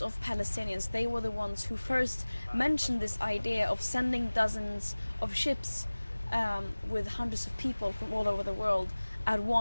of Palestinians. They were the ones who first mentioned this idea of sending dozens of ships with hundreds of people from all over the world at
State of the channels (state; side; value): inverted; both; correlation -1.00